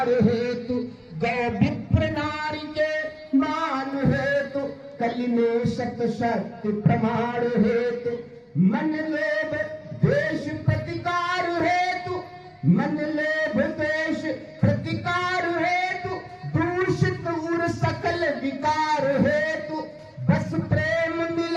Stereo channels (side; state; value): both; identical; correlation 1.00